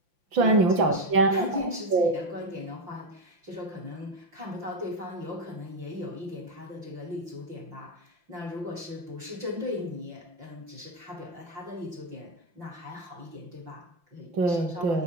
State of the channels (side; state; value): left; late; 5.8 ms